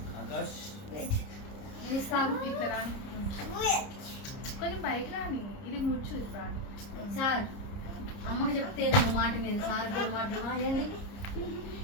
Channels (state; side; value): late; right; 30 ms